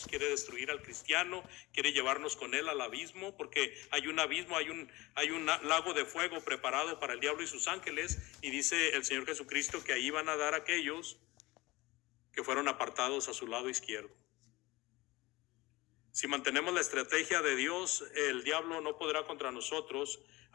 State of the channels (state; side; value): quieter; right; 21.0 dB